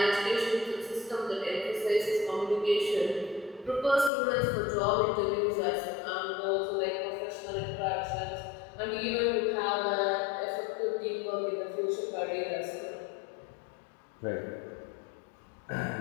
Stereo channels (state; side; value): drops out; right; at 4.1 s